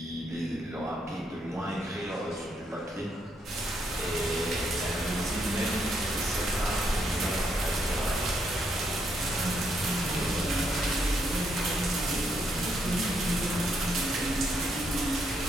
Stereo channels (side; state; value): both; normal; correlation 0.76